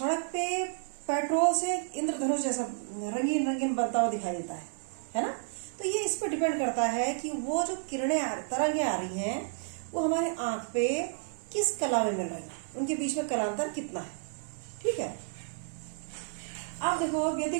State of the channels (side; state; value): left; silent; digital silence